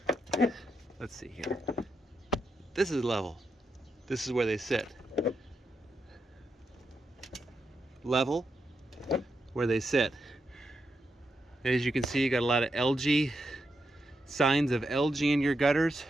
Let's see here. This is level. This is where they sit. Level, where they sit. As you can see, you got a lot of algae, signs of algae in your gutters.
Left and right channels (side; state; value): both; normal; correlation 0.84